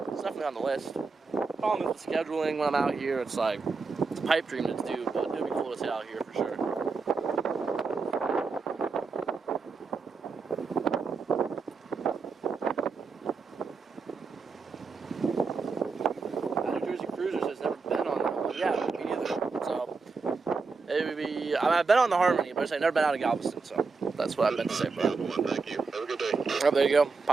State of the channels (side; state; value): left; quieter; 4.5 dB